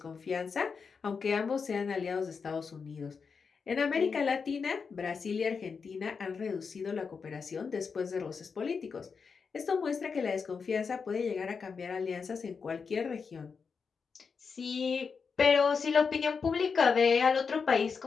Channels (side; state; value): right; quieter; 5.5 dB